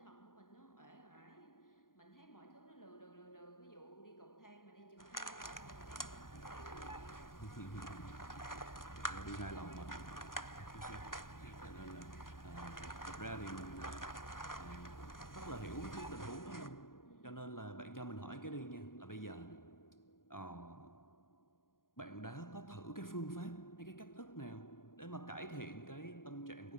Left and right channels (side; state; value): right; late; 0.91 ms